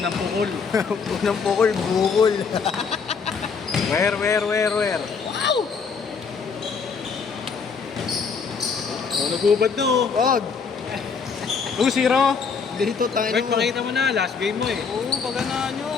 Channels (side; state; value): right; quieter; 5.6 dB